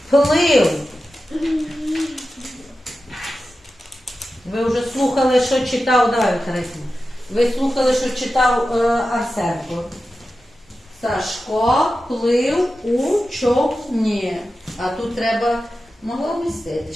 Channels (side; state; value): both; normal; correlation 0.93